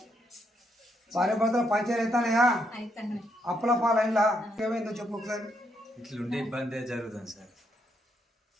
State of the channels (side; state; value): both; normal; correlation 0.77